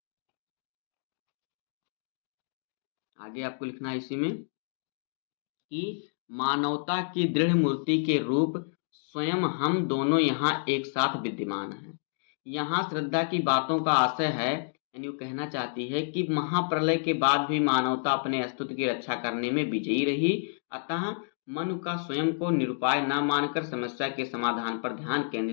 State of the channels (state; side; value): silent; right; digital silence